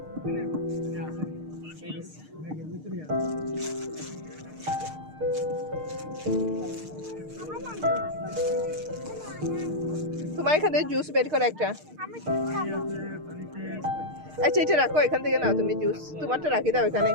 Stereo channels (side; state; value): left; late; 6.5 ms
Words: তোমার এখানে জুস বের করে একটা। আচ্ছা এটা রাখো, এখান থেকে নাও তুমি জুস। তোমারটা রাখি দাও এখানে।